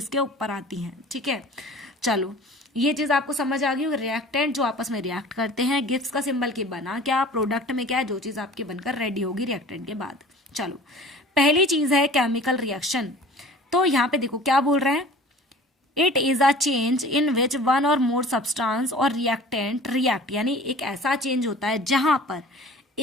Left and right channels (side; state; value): both; normal; correlation 0.44